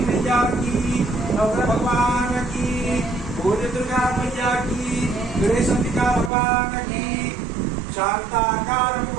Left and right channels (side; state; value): left; drops out; at 6.3 s